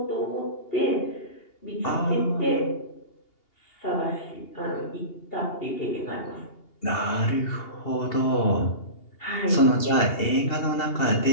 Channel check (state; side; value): late; right; 2.8 ms